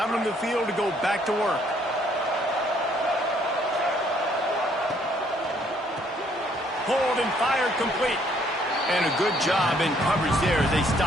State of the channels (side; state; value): both; normal; correlation 0.66